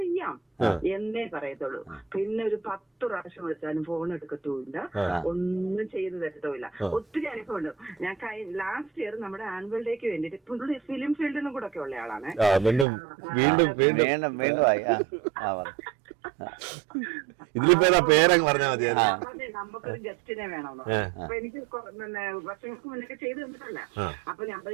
എന്നേ പറയത്തുള്ളൂ. പിന്നെ ഒരു 10 പ്രാവശ്യം വിളിച്ചാലും ഫോൺ എടുക്കത്തുമില്ല, ഒന്നും ചെയ്തു തരത്തുമില്ല. ഒത്തിരി അനുഭവമുണ്ട്. ഞാൻ ലാസ്റ്റ് ഇയർ നമ്മുടെ ആനുവൽ ഡേക്ക് വേണ്ടിട്ട് പുള്ളി ഫിലിം ഫീൽഡിനും കൂടെ ഒക്കെ ഉള്ള ആളാണ്. ഇതിലിപ്പോ പേരങ്ങ് പറഞ്ഞാൽ മതി. നമുക്കൊരു ഗസ്റ്റിനെ വേണമെന്നോ, അപ്പൊ എനിക്ക് വർഷങ്ങൾക്ക് മുന്നേ ചെയ്തു തന്നിട്ടല്ല. അപ്പൊ ഞാൻ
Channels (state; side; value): drops out; left; at 12.9 s